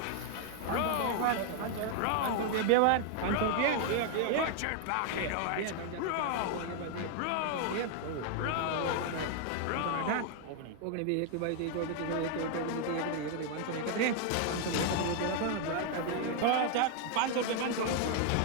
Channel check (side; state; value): both; different; correlation 0.00